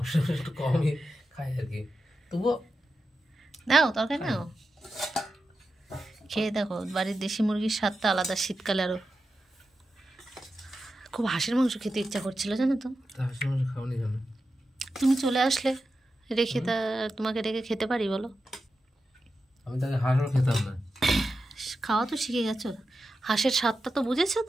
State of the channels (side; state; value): both; normal; correlation 0.90